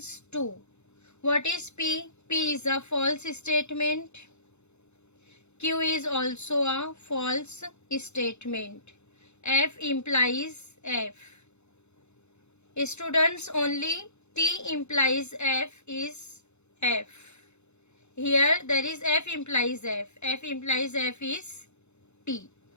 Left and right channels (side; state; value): right; late; 0.82 ms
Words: to. What is P? P is a false statement. Q is also a false statement. F implies F. Students, only T implies F is F. Here there is F implies F. F implies F is T.